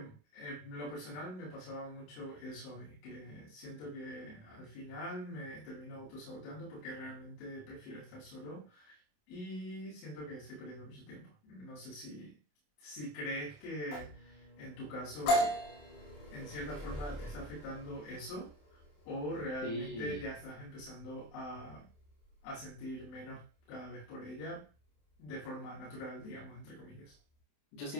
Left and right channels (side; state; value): right; late; 27 ms